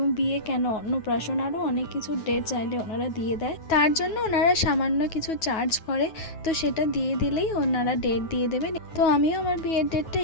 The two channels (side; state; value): right; late; 9.3 ms